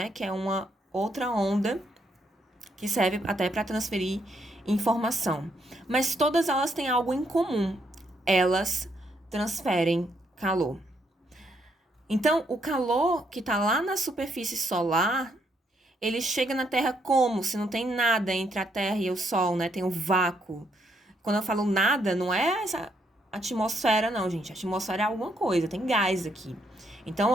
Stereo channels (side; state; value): both; normal; correlation 0.74